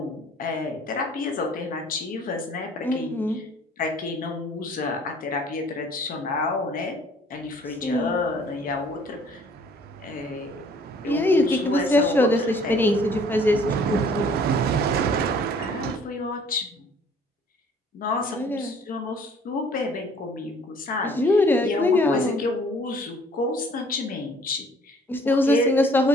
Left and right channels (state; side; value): normal; both; correlation 0.56